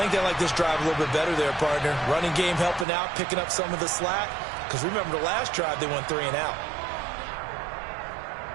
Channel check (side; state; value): left; drops out; at 2.9 s